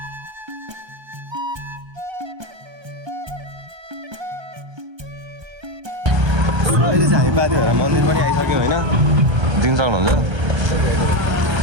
अहिले चाहिँ हामी पाथिभरा मन्दिर पनि आइसक्यौँ होइन दिन सक्नुहुन्छ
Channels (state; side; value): late; left; 1.3 ms